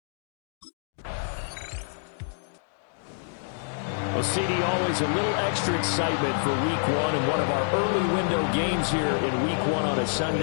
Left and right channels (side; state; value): right; silent; digital silence